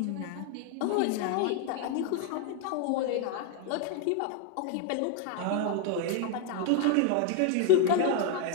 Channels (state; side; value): different; both; correlation 0.00